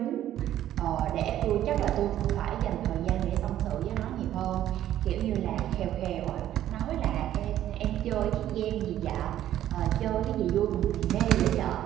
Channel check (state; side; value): quieter; left; 12.2 dB